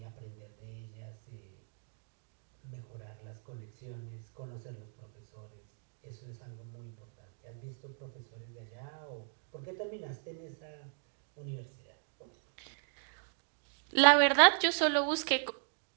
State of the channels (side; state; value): left; silent; digital silence